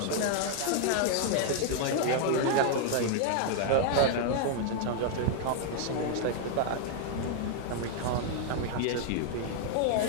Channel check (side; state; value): both; different; correlation 0.00